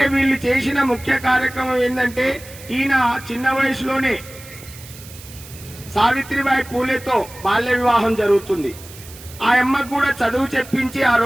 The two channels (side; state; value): right; noise; hiss, 18 dB below the sound